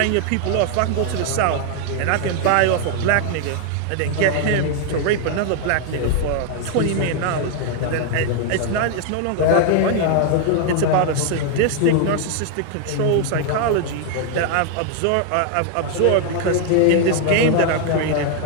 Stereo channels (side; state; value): both; different; correlation 0.00